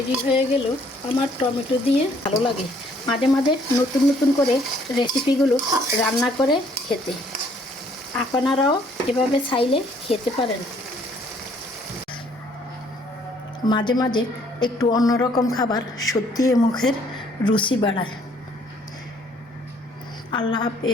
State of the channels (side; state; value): both; normal; correlation 0.63